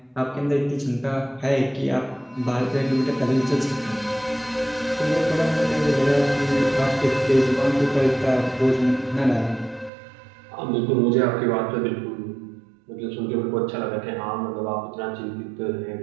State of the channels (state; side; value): drops out; left; at 9.9 s